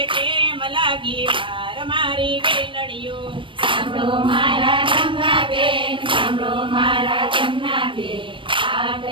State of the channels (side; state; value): left; late; 0.25 ms